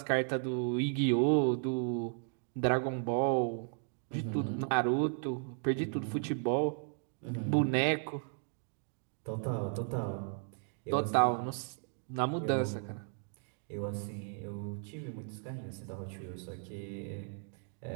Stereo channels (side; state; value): left; silent; 54 dB below the other